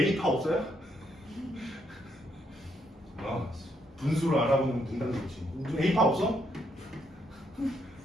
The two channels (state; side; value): normal; both; correlation 0.75